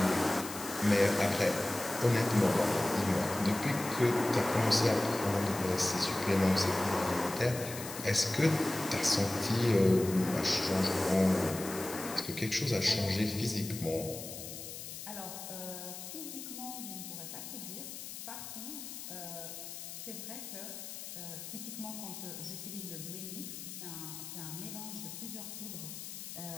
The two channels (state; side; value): noise; left; hiss, 10 dB below the sound